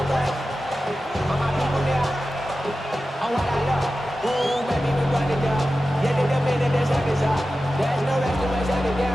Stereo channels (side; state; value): both; normal; correlation 0.94